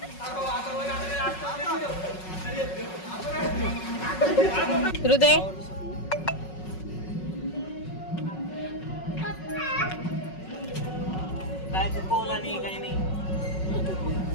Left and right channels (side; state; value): right; late; 5.4 ms